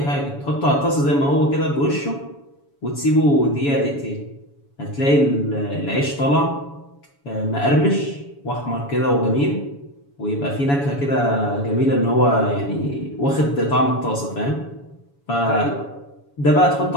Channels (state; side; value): late; right; 7.1 ms